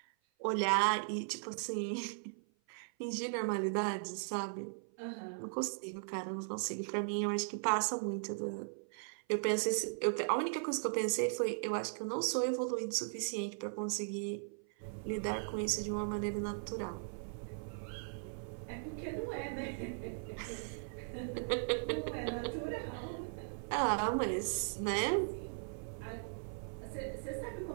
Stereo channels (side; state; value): left; silent; 52 dB below the other